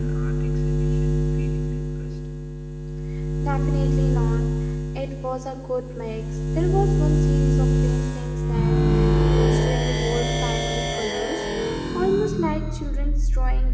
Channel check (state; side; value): identical; both; correlation 1.00